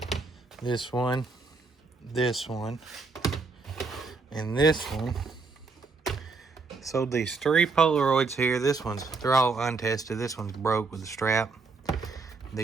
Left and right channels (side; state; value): left; quieter; 4.2 dB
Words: This one, and this one. So these 3 Polaroids here. They're all untested. This one's broke with the strap.